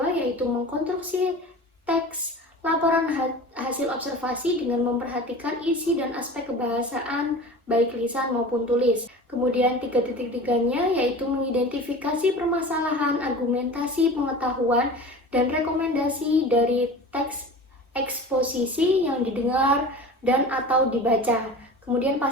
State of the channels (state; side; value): normal; both; correlation 0.36